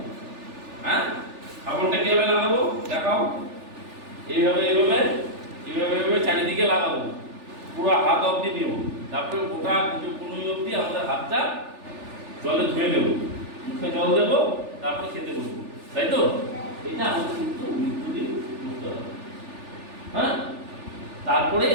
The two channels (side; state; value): left; late; 3.4 ms